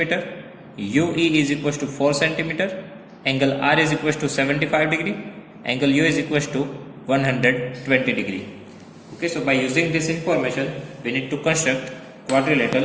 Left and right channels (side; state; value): both; identical; correlation 1.00